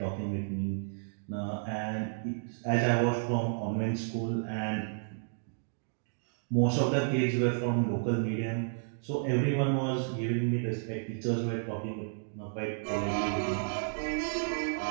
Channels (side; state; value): left; silent; digital silence